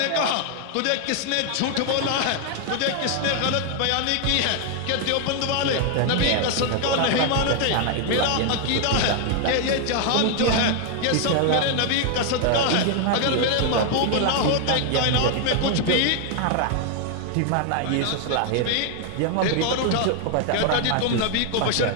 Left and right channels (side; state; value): both; different; correlation 0.00